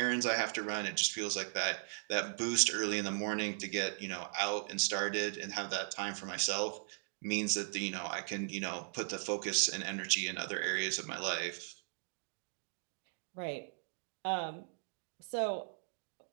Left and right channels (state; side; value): silent; left; digital silence